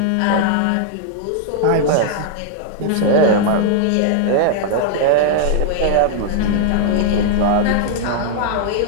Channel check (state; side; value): different; both; correlation -0.01